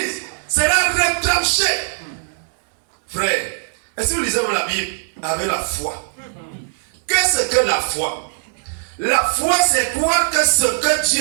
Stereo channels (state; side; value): silent; left; 62 dB below the other